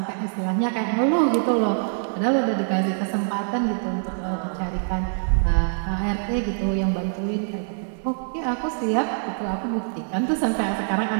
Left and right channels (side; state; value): left; silent; digital silence